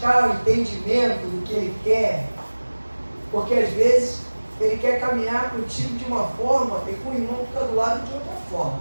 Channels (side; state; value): both; inverted; correlation -1.00